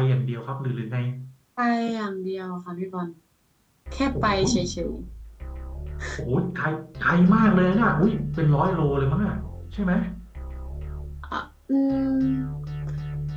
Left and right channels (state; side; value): identical; both; correlation 1.00